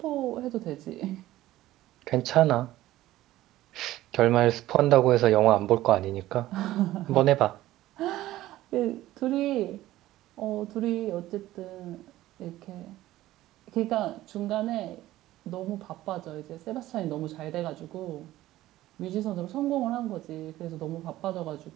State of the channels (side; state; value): left; quieter; 15.4 dB